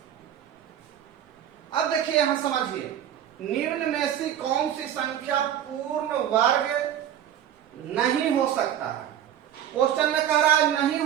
अब देखिए यहां समझिए, निम्न में से कौन सी संख्या पूर्ण वर्ग नहीं हो सकता है। क्वेश्चन में कह रहा है नहीं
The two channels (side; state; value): left; quieter; 10.4 dB